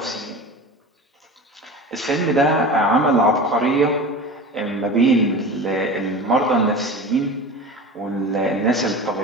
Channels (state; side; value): normal; both; correlation 0.33